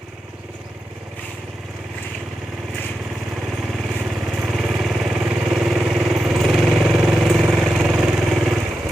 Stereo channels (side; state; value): both; normal; correlation 0.89